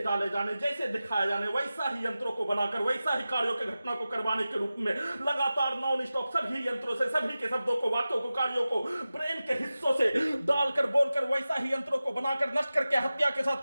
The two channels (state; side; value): inverted; both; correlation -0.95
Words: जाने, जैसे दिखाया जाने वैसा ही यंत्रों को बनाकर वैसा ही कार्यों के घटना को करवाने के रूप में लगातार नॉन स्टॉप सभी यंत्रों से सभी के शब्दों को, वाक्यों को, कार्यों को ब्रेन के हिस्सों से डालकर बोलकर वैसा ही यंत्रों को बनाकर नष्ट करके हत्या के साथ